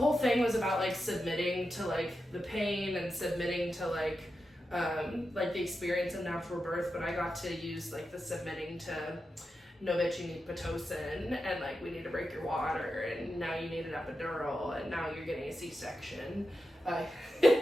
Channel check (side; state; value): both; normal; correlation 0.89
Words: thing was about, like, submitting to, like, the pain and submitting to, like the experience of natural birth, but I got to use, like, the submitting to know that you need Pitocin, and like we need to break your water, and now you need an epidural, and now you're getting a C-section. I'm